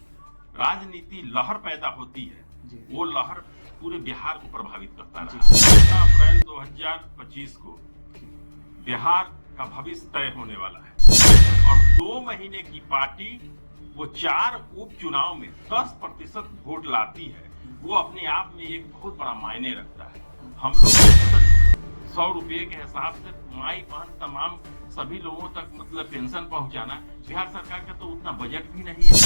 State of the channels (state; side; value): inverted; both; correlation -1.00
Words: राजनीति लहर पैदा होती है वो लहर पूरे बिहार को प्रभावित करता रहा। 15 अप्रैल 2025 को बिहार का भविष्य तय होने वाला है और 2 महीने की पार्टी वो 4 उपचुनाव में 10% वोट लाती है, वो अपने आप में एक बहुत बड़ा मायने रखता है। हम लोग 100 रुपए के हिसाब से माई बहन तमाम सभी लोगों तक मतलब पेंशन पहुंचाना, बिहार सरकार का तो उतना बजट भी नहीं है।